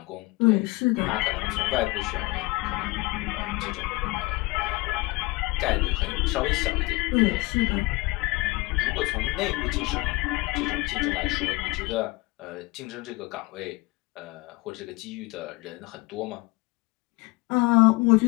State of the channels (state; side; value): quieter; right; 23.4 dB